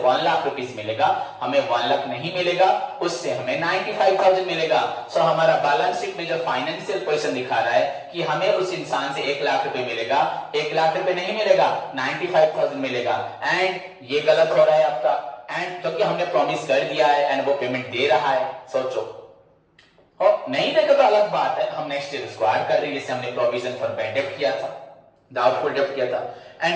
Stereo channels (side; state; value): both; identical; correlation 1.00